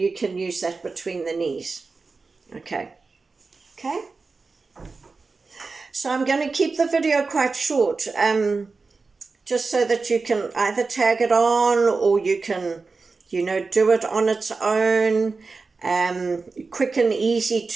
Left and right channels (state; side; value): quieter; left; 4.2 dB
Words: can use that between the knees, okay? Okay? So I'm going to keep the video quite short, just so that you can either tag it on, or you can, you know, do it on its own, quick and easy